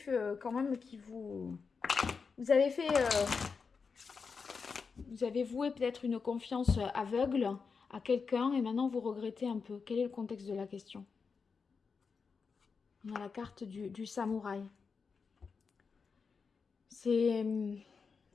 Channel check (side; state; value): right; quieter; 5.2 dB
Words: quand même qui vous... Vous avez fait... vous avez voué peut-être une confiance aveugle à quelqu'un et maintenant vous regrettez un peu. Quel est le contexte de la question? On a la carte du samouraï. C'est...